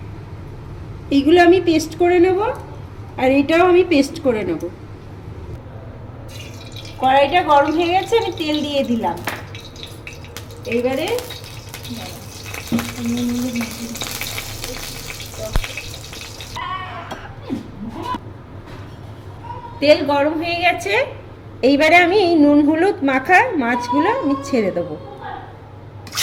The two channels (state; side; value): identical; both; correlation 1.00